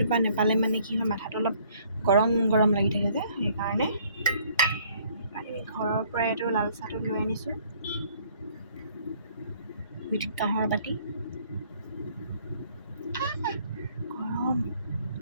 নেপালে মানে কি হয় মাথাটো অলপ গৰম গৰম লাগি থাকে যে সেইকাৰণে আমি ঘৰৰ পৰাই এইটো লাল চাহটো লৈ আনিছোঁ উইথ কাঁহৰ বাতি গৰম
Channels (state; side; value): inverted; both; correlation -0.61